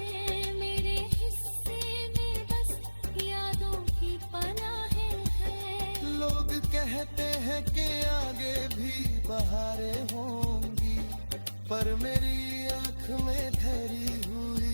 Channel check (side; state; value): both; inverted; correlation -1.00